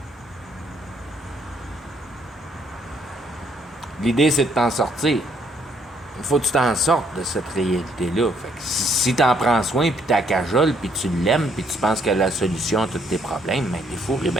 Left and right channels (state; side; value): normal; both; correlation 0.69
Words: L'idée, c'est de t'en sortir. Il faut que tu t'en sortes de cette réalité-là. Fait que si t'en prends soin, puis t'as cajole, puis tu l'aimes, puis tu penses que la solution à tous tes problèmes, ben t'es fou et